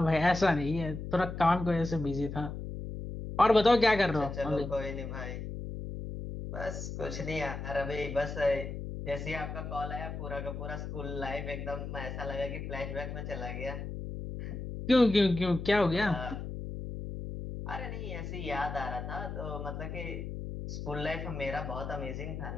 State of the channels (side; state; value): left; noise; hum, 6 dB below the sound